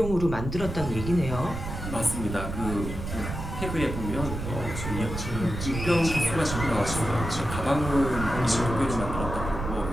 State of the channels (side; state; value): right; noise; rumble, 6 dB below the sound